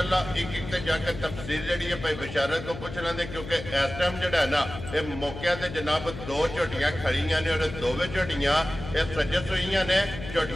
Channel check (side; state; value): left; noise; hum, 10 dB below the sound